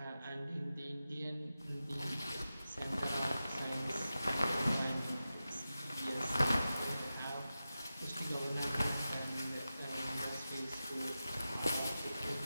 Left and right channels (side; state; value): both; inverted; correlation -0.93